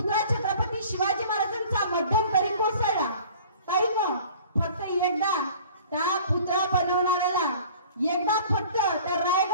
छत्रपती शिवाजी महाराजांचा मध्यंतरी कोसळला. ताईनं फक्त एकदा त्या पुतळा बनवणाऱ्याला एकदा फक्त त्या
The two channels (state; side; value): inverted; both; correlation -0.47